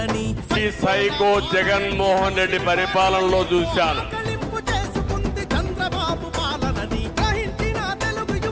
సైకో జగన్మోహన్ రెడ్డి పరిపాలనలో చూశాను చేసుకుంది చంద్రబాబు పాలనని గ్రహించిన తెలుగు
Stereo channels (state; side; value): identical; both; correlation 1.00